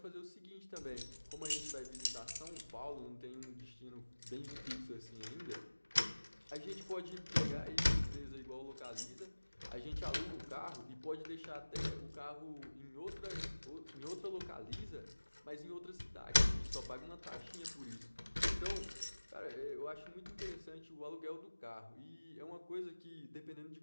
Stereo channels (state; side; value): inverted; both; correlation -1.00